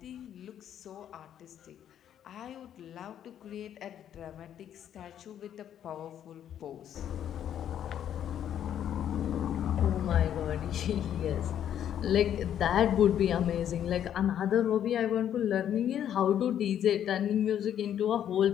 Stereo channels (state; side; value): quieter; right; 10.0 dB